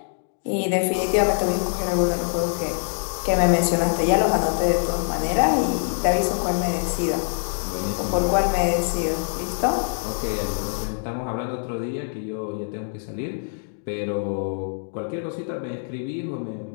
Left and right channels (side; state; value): right; silent; digital silence